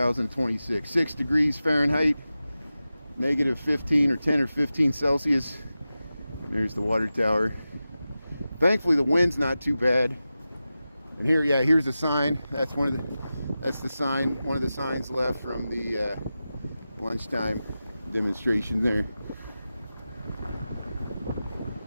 6 degrees Fahrenheit, negative 15 or 10 or 15 Celsius. And there's the water tower. Thankfully, the wind's not too bad. And here's the sign. That's one of the signs left from the lunchtime demonstration there.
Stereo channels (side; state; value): both; inverted; correlation -0.93